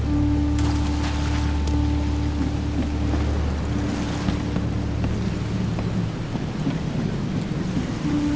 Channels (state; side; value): noise; right; hum, 19 dB below the sound